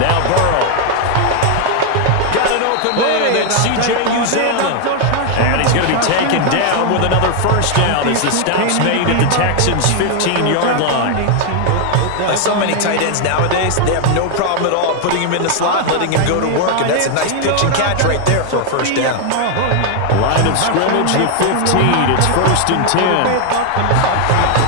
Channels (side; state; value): both; different; correlation 0.01